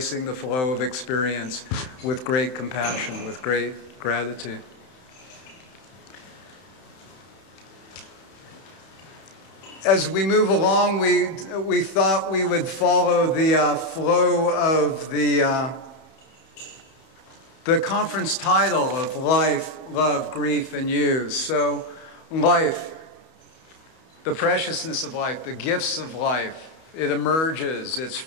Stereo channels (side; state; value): right; late; 31 ms